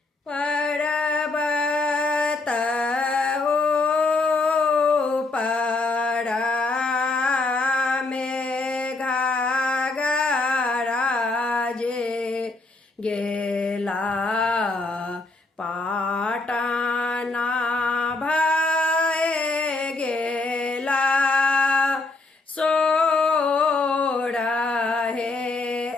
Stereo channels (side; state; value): right; quieter; 3.4 dB